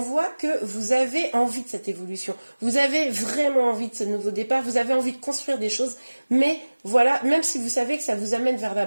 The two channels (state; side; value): inverted; both; correlation -1.00